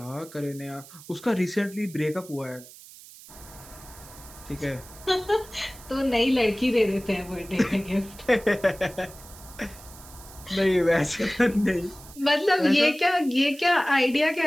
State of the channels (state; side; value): noise; right; hiss, 19 dB below the sound